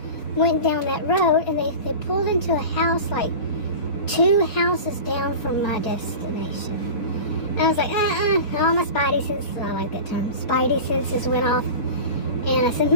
went down that road, and they pulled into a house like 2 houses down from my destination. And I was like, all my spidey senses, I like that term, spidey senses went off. And I said, I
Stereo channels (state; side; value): late; right; 4.3 ms